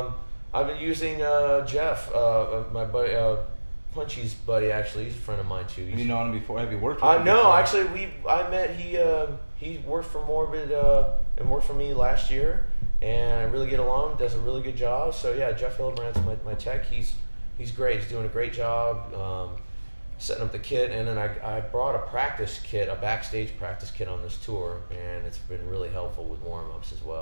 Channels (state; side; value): inverted; both; correlation -1.00